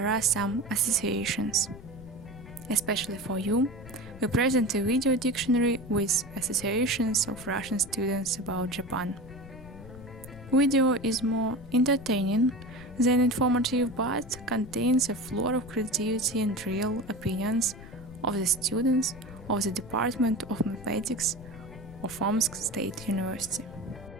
are some associations. Especially for you, we present a video dictionary with associations of Russian students about Japan. Video is more entertaining than informative but contains a flood of creativity and real opinions of the students of the Department of Mathematics of Omsk State University.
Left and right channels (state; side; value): noise; left; rumble, 16 dB below the sound